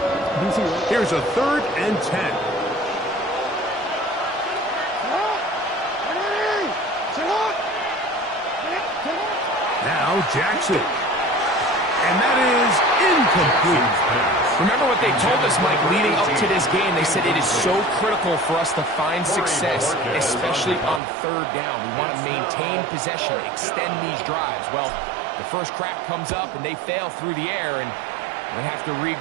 Here's a third and 10. Now Jackson. And that is incomplete. Remember what they told us, Mike, leading up to this game. They said it is so critical for us to find success, especially on third down. We want to maintain possession, extend these drives. Well, the first crack comes up, and they fail through the air, and they have to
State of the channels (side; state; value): left; drops out; at 21.0 s